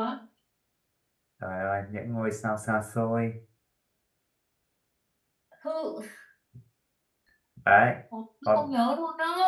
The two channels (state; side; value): identical; both; correlation 1.00